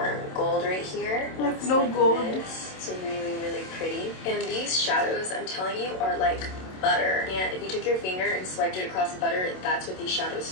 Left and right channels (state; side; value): late; right; 27 ms